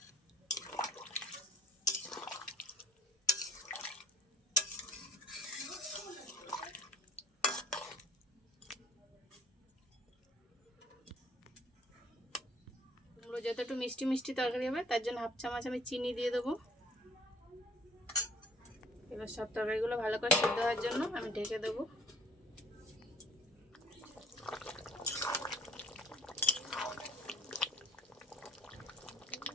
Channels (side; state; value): both; normal; correlation 0.56